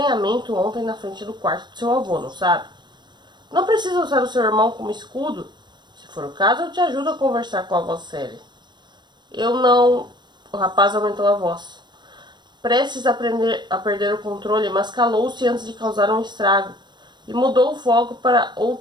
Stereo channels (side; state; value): left; late; 0.22 ms